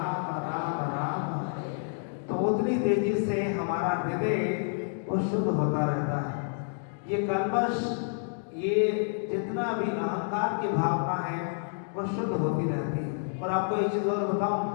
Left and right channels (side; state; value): right; silent; digital silence